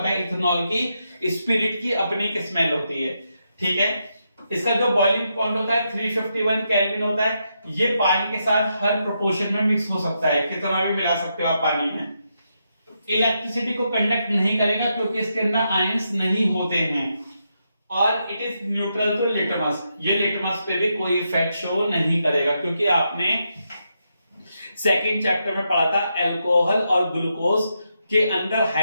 है इथेनॉल की स्पिरिट की अपनी एक स्मेल होती है। ठीक है, इसका जो बॉइलिंग पॉइंट होता है 351 केल्विन होता है। ये पानी के साथ हर प्रोपोर्शन में मिक्स हो सकता है, कितना भी मिला सकते हो आप पानी में। इलेक्ट्रिसिटी को कंडक्ट नहीं करेगा क्योंकि इसके अंदर आयंस नहीं होते हैं, और it is neutral to litmus, ये लिटमस पे भी कोई इफेक्ट शो नहीं करेगा, क्योंकि आपने सेकंड चैप्टर में पढ़ा था अल्कोहल और ग्लूकोज के अंदर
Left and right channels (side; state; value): both; inverted; correlation -0.83